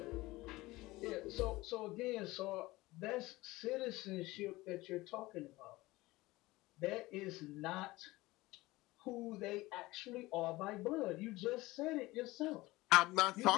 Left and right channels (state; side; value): quieter; right; 19.8 dB